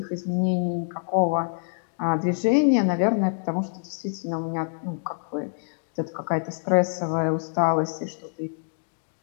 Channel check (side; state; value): right; silent; digital silence